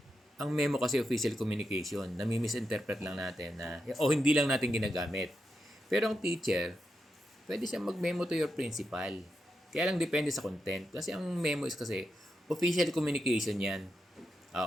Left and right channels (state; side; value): normal; both; correlation 0.86